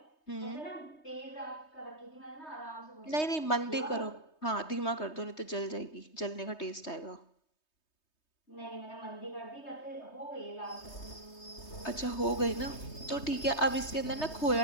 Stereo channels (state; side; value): late; right; 3.2 ms